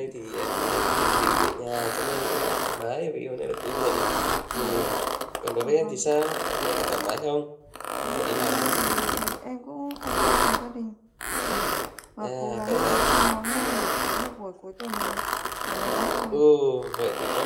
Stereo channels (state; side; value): identical; both; correlation 1.00